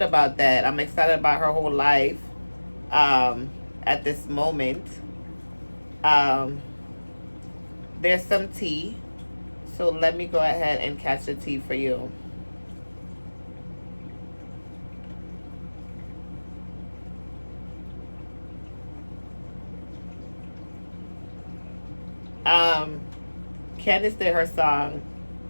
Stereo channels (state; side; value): inverted; both; correlation -1.00